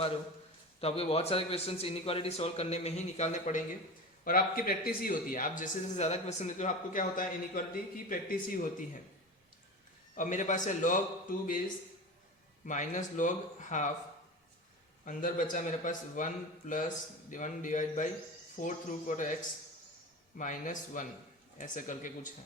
रहे हो तो आपको बहुत सारे क्वेश्चंस इनइक्वालिटी सॉल्व करने में ही निकालने पड़ेंगे, और आपकी प्रैक्टिस ही होती है। आप जैसे जैसे ज़्यादा क्वेश्चन देते हो आपको क्या होता है, इनइक्वालिटी की प्रैक्टिस ही होती है। अब मेरे पास है log 2 base minus log half, अंदर बचा मेरे पास 1 plus 1 divide by 4 root of x minus 1, ऐसे करके कुछ है।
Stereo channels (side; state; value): both; normal; correlation 0.29